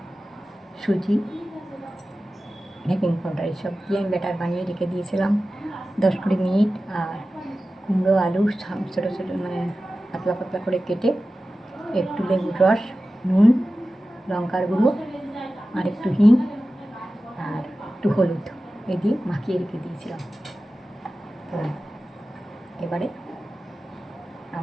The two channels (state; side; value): normal; both; correlation 0.95